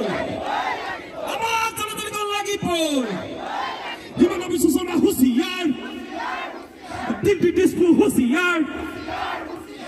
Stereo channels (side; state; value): both; identical; correlation 1.00